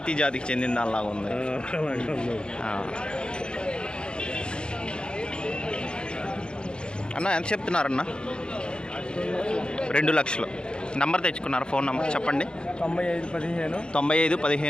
జాతికి చెందిన దానిలాగా ఉంది. అన్న ఎంత చెప్తున్నారన్న? 2 లక్షలు. నంబర్ తెచ్చుకున్నారు? ఫోన్ నెంబర్ చెప్పండి. 9515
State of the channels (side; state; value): right; late; 0.050 ms